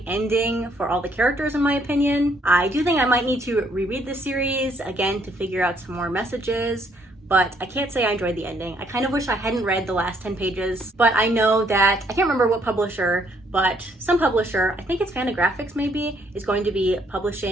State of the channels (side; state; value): both; normal; correlation 0.68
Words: ending for all the characters in my opinion. I do think I might need to reread the series again to figure out some more messages, but I can't say I enjoyed the ending. I kind of wish I hadn't read the last 10 pages, but I know that, I can't remember what publisher, but some publisher, I think it's Fantagraphics maybe, is going to be